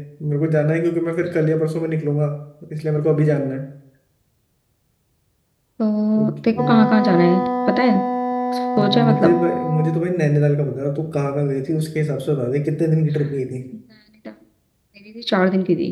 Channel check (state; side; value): identical; both; correlation 1.00